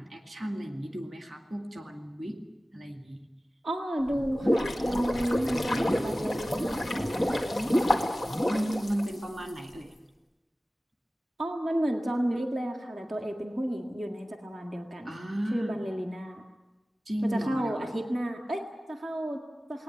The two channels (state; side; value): normal; both; correlation 0.96